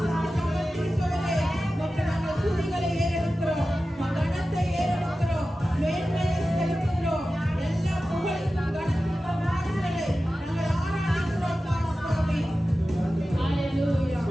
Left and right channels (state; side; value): normal; both; correlation 0.94